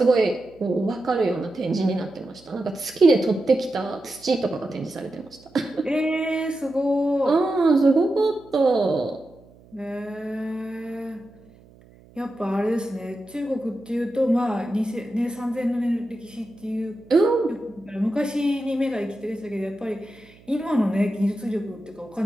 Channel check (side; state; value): right; noise; hum, 26 dB below the sound